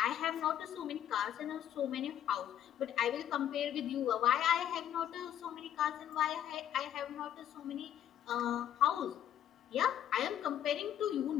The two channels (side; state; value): right; quieter; 10.7 dB